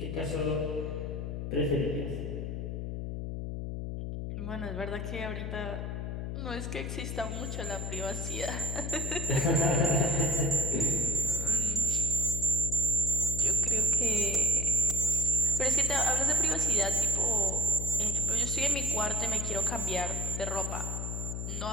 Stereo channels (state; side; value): noise; left; hum, 4 dB below the sound